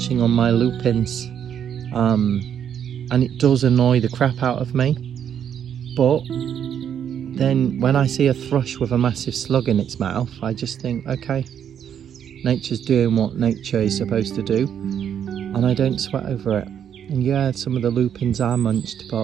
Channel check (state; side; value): quieter; left; 8.8 dB